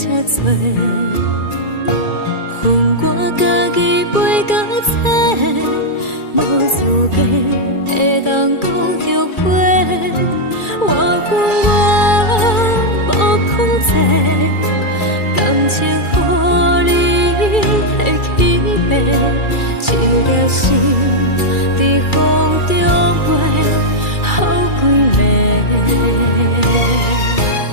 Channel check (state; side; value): late; right; 2.3 ms